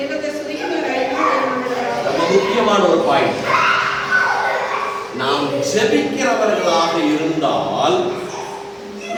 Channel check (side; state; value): both; identical; correlation 1.00